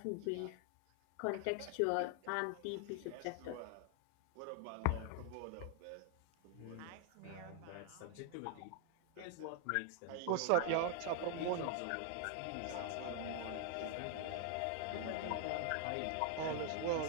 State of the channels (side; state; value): both; different; correlation 0.00